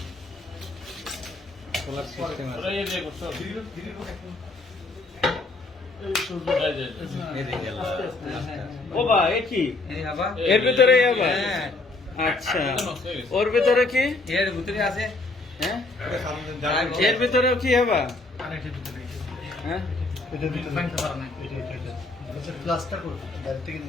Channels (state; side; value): quieter; right; 3.2 dB